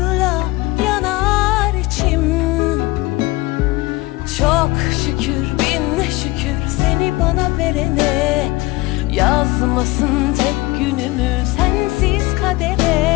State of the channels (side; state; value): right; quieter; 21.1 dB